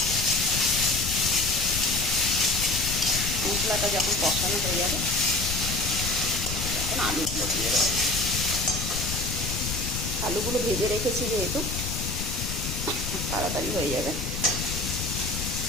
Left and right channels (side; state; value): left; noise; rumble, 4 dB below the sound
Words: মশলাটা যখন কষানো হয়ে যাবে, তখন আলুগুলো দিয়ে দেবো। আলুগুলো ভেজে রেখেছি যেহেতু, তাড়াতাড়ি হয়ে যাবে